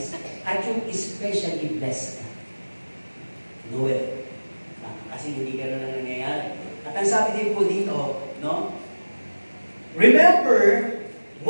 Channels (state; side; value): inverted; both; correlation -1.00